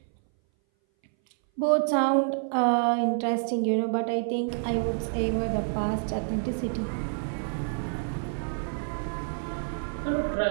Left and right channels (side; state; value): left; silent; 58 dB below the other